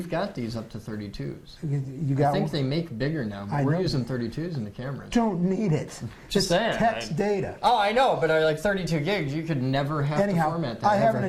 got these up to 32s. You got I think they make bigger now, but we're using 32s in the cameras. Don't need it. Just saying. Text data. Oh, I know, but like 32 gigs, you could never have to format that. I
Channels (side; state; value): both; identical; correlation 1.00